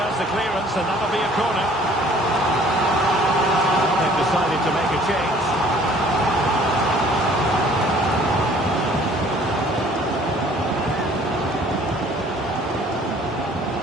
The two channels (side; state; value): both; normal; correlation 0.55